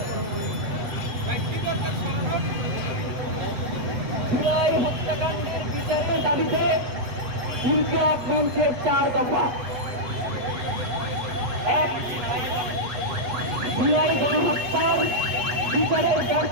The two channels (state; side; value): late; left; 8.0 ms